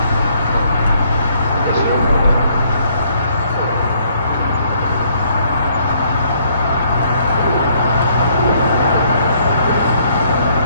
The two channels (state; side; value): inverted; both; correlation -0.67